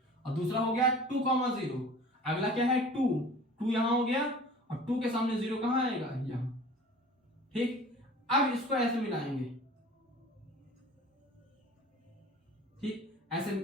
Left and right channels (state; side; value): normal; both; correlation 0.43